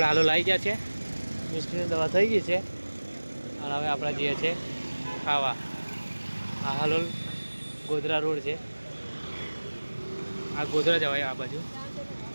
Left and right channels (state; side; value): inverted; both; correlation -1.00